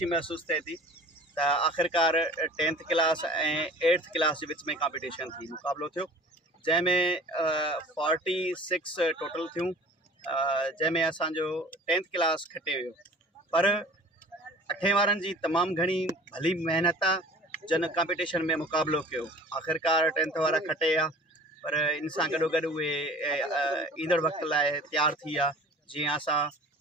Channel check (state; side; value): normal; both; correlation 0.44